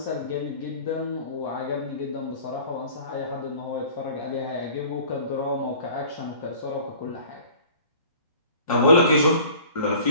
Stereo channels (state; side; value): inverted; both; correlation -0.47